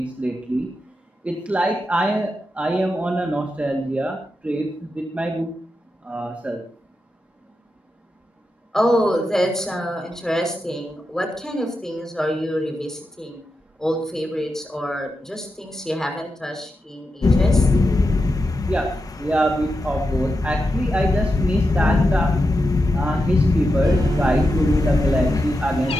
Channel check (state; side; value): normal; both; correlation 0.88